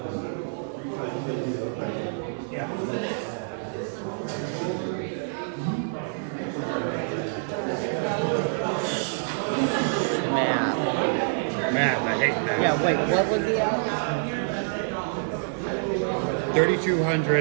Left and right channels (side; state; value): left; silent; 60 dB below the other